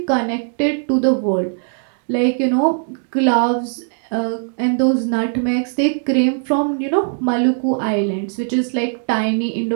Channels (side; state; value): left; silent; 66 dB below the other